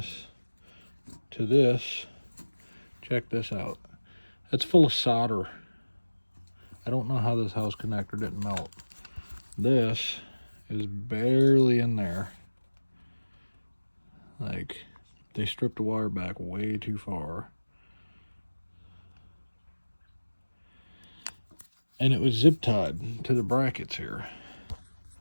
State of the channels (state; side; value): inverted; both; correlation -1.00